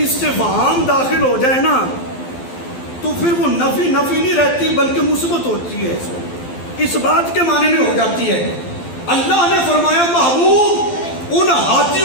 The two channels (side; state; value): right; late; 12 ms